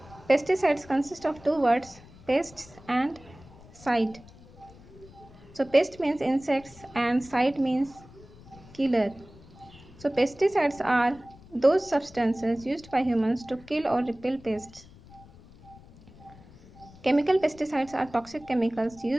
Pesticides consist of two words, pests and side. So pest means insects and side means killer. So pesticides are those substances used by humans to kill or repel pests. Chemical pesticides are toxic chemicals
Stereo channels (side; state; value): left; noise; rumble, 22 dB below the sound